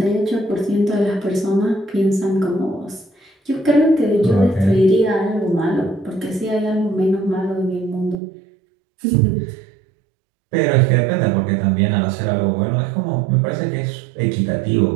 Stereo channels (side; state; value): left; drops out; at 8.2 s